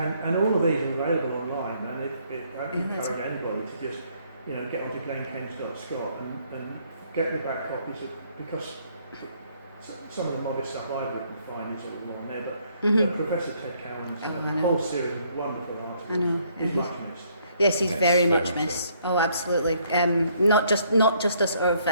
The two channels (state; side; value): inverted; both; correlation -0.67